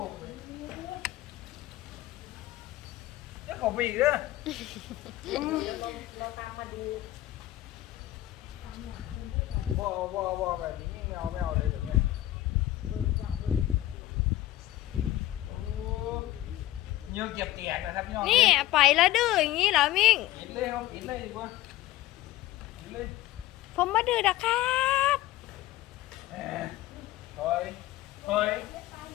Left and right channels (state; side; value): quieter; right; 15.4 dB